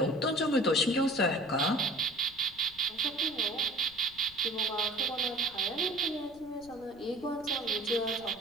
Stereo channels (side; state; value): left; noise; rumble, 24 dB below the sound